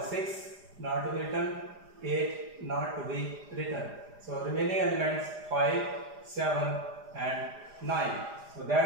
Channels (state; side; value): late; left; 4.9 ms